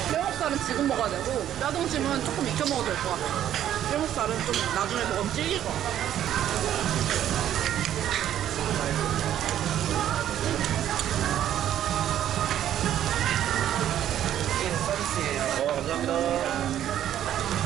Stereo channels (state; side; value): quieter; left; 11.1 dB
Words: 뼈목살은 지금 먹어야 되고 뼈등심은 조금 익혀 먹어도 될 것 같아. 뼈목살은 좀 나중에 먹으면 질길 것 같아. 감사합니다.